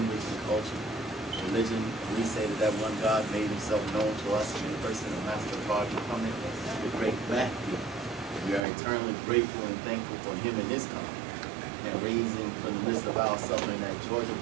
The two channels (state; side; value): drops out; left; at 8.6 s